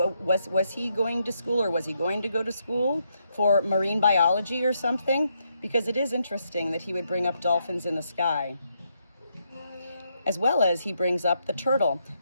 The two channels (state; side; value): inverted; both; correlation -0.78